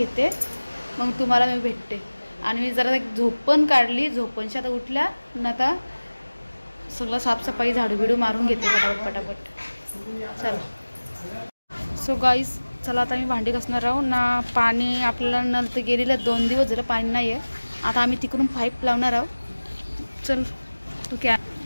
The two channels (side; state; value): both; inverted; correlation -1.00